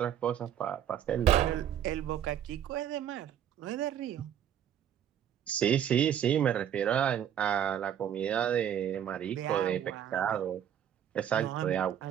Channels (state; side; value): quieter; left; 9.8 dB